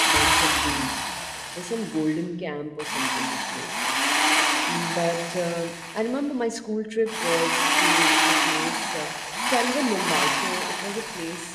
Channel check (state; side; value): identical; both; correlation 1.00